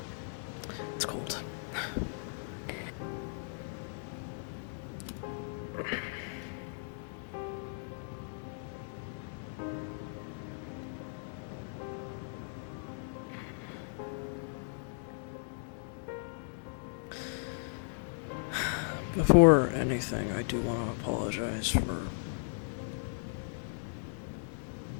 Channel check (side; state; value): right; silent; 53 dB below the other